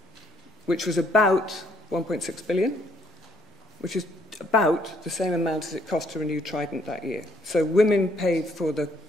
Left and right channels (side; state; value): both; normal; correlation 0.67